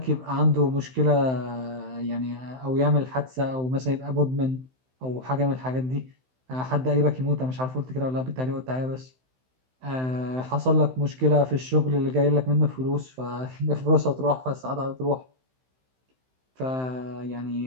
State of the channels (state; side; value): late; left; 16 ms